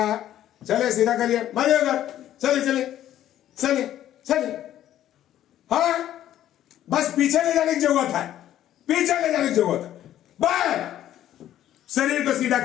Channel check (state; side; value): quieter; right; 12.1 dB